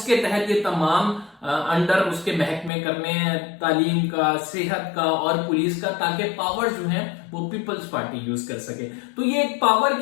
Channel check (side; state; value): right; drops out; at 2.7 s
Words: तहत ये तमाम अंडर उसके महकमे करने हैं, तालीम का, सेहत का और पुलिस का, ताकि पावर्स जो है वो पीपल्स पार्टी यूज कर सके। तो ये एक पावर